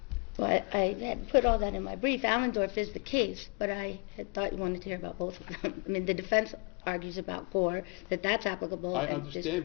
Well, I had put all that in my brief. Allendorf is the case, but I had thought you wanted to hear about both of them. I mean, the defense argues about Gore, that that's applicable. I and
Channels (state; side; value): quieter; right; 33.5 dB